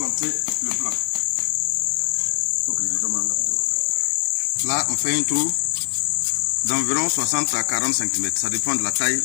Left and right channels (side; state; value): right; silent; 64 dB below the other